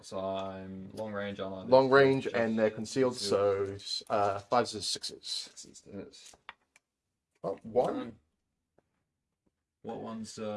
So I'm long range, aren't I? Long range and they're concealed, so 5s and 6s. 6s to hit. Oh, 1? What one's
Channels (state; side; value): identical; both; correlation 1.00